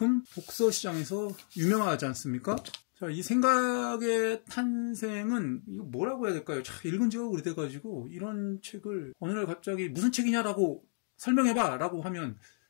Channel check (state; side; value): silent; right; 56 dB below the other